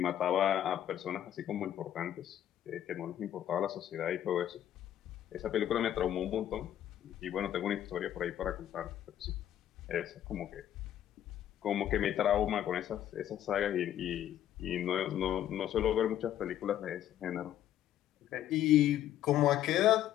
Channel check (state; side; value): quieter; right; 11.4 dB